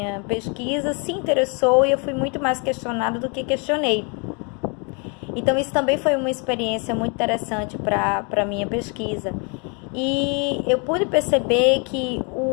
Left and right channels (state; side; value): quieter; right; 34.6 dB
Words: pesquisa, se interessou e eu fui muito mais questionada do que questionei. Então isso também foi uma experiência muito interessante para a minha pesquisa. E eu pude perceber que